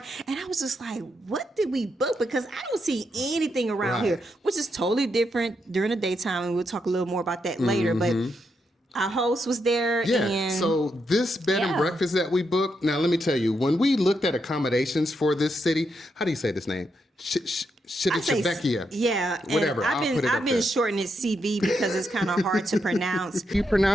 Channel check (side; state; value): both; normal; correlation 0.81